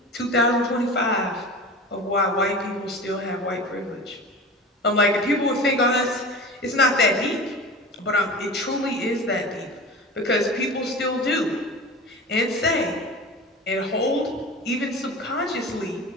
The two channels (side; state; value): both; normal; correlation 0.33